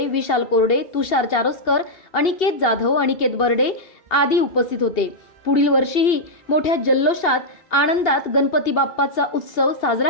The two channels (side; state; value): right; late; 2.7 ms